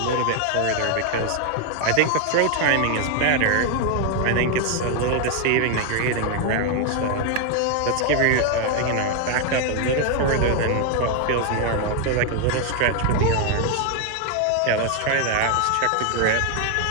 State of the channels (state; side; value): different; both; correlation 0.00